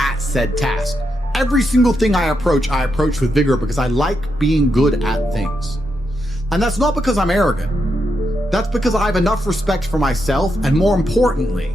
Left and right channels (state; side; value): normal; both; correlation 0.83